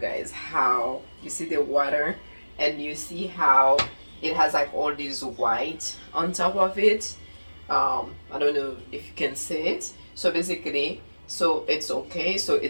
guys how you see the water, and you see how it has like all this white on top of it. I don't know if you can see it. So basically, so it's okay. So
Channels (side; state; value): both; inverted; correlation -1.00